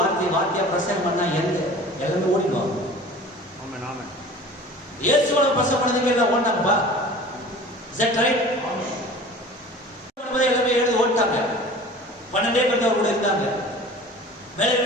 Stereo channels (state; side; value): normal; both; correlation 0.42